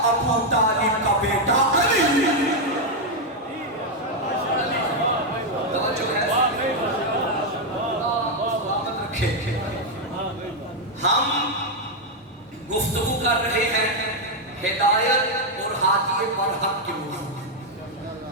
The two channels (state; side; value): normal; both; correlation 0.01